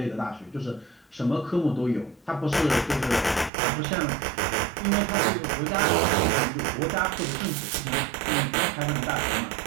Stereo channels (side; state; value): left; drops out; at 3.5 s